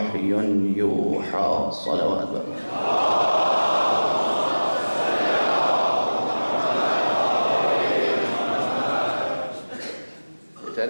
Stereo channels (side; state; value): both; inverted; correlation -1.00